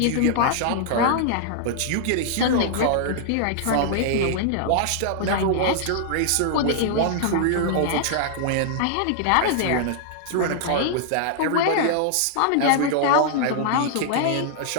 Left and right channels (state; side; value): different; both; correlation -0.01